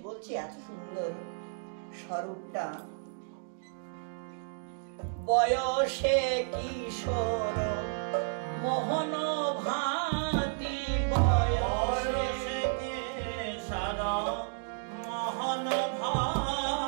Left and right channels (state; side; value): silent; left; digital silence